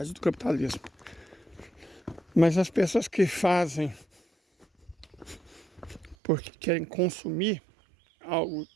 do capitalismo. Mas as pessoas que fazem porque querem consumir algo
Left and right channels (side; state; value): left; drops out; at 6.2 s